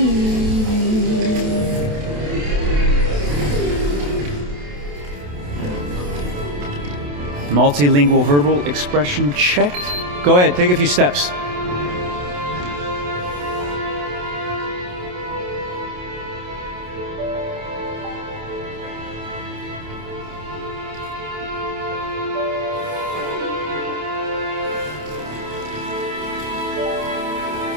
Multilingual verbal expression checked. Go ahead, take a few steps.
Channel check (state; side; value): late; left; 28 ms